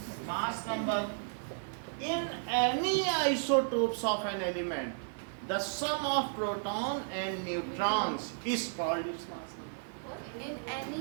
Mass number in any isotopes of an element the sum of proton and neutrons is called its mass number। In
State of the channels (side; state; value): left; silent; 55 dB below the other